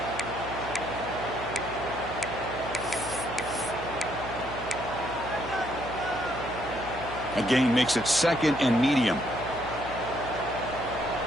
A gain makes it second and medium.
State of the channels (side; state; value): right; noise; hum, 12 dB below the sound